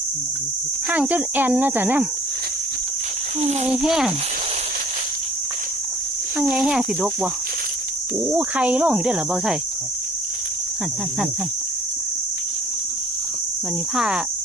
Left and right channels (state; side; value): normal; both; correlation 0.53